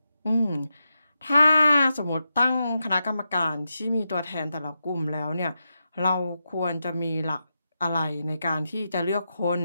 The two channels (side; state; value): both; inverted; correlation -0.87